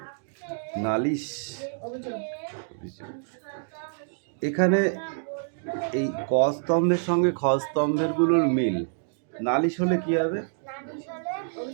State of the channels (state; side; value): silent; left; digital silence